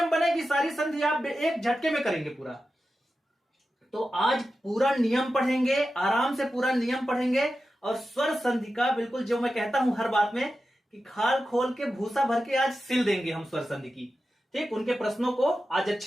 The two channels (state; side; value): normal; both; correlation 0.92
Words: बनेगी सारी संधि आप एक झटके में करेंगे पूरा। तो आज पूरा नियम पढ़ेंगे, आराम से पूरा नियम पढ़ेंगे, और स्वर संधि का बिल्कुल जो मैं कहता हूं हर बात में कि खाल खोल के भूसा भर के आज सिल देंगे हम स्वर संधि की। ठीक, उनके प्रश्नों को आज